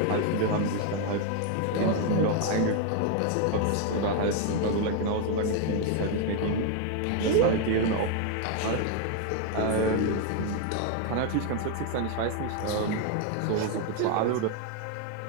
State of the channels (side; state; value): both; different; correlation 0.00